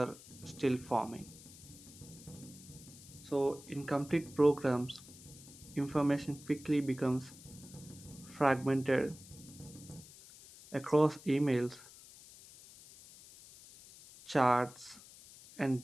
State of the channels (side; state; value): left; noise; hiss, 19 dB below the sound